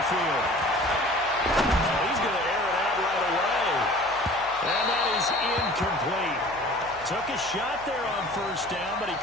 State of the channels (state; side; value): noise; left; hum, 24 dB below the sound